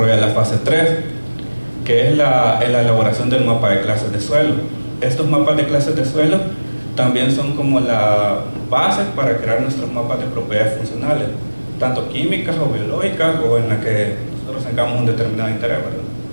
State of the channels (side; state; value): both; inverted; correlation -1.00